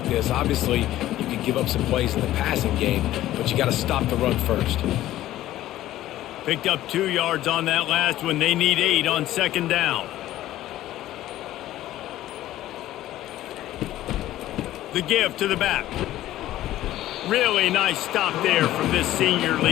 this, obviously you can give up some plays in the passing game, but you got to stop the run first. Picked up 2 yards on that last one. They need 8 on second down. The give to the back. Really nice stop there from this senior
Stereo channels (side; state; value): right; quieter; 14.3 dB